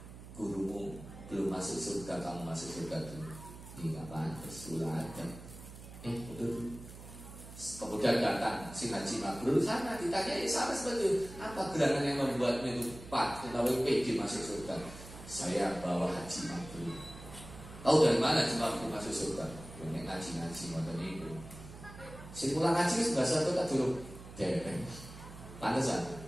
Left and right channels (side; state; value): right; noise; hum, 15 dB below the sound